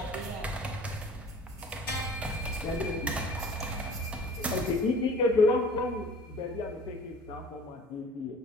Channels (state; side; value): normal; both; correlation 0.47